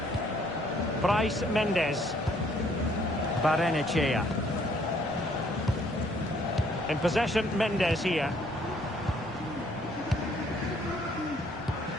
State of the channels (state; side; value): normal; both; correlation 0.64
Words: Bryce Mendes. Barrenechea. In possession, Mendes here.